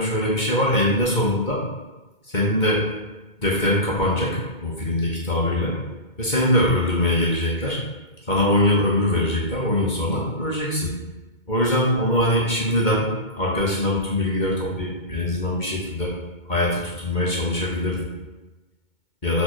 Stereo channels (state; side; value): late; right; 2.2 ms